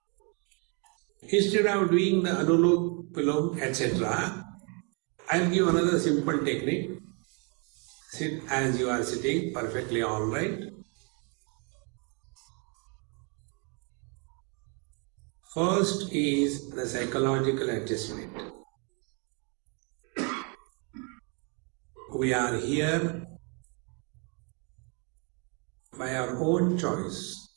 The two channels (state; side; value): quieter; left; 35.5 dB